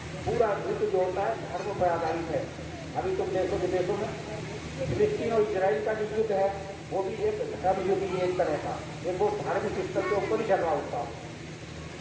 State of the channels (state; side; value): identical; both; correlation 1.00